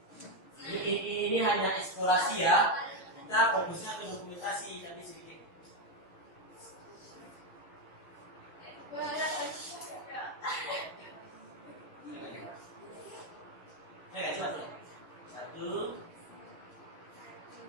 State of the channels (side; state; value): right; late; 6.7 ms